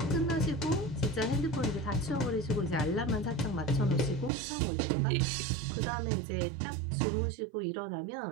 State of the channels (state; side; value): drops out; left; at 4.3 s